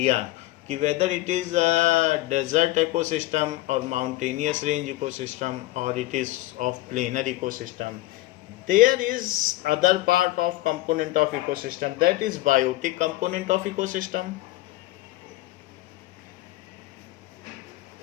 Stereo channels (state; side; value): quieter; right; 17.8 dB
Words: कि whether it is desert ecosystem और माउंटेनियस रेंज इकोसिस्टम और it is of planar ecosystem. There is other part of component of ecosystem, that is biotic component of ecosystem.